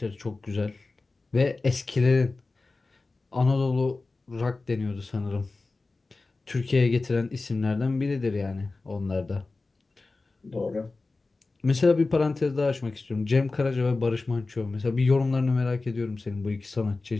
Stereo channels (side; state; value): right; quieter; 3.5 dB